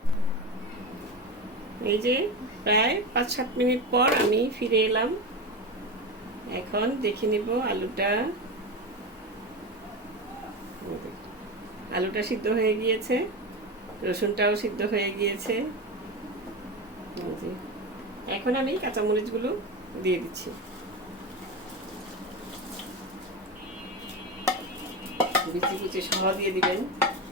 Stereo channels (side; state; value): both; normal; correlation 0.21